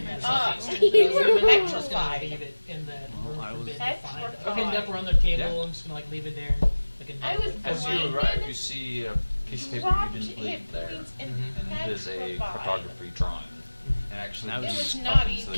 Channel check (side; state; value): both; inverted; correlation -1.00